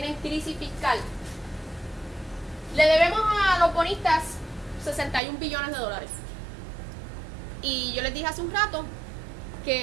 en crisis fiscal. Le debemos a los bonistas 61 billones de dólares. Y yo les dije hace un rato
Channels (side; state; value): left; drops out; at 5.2 s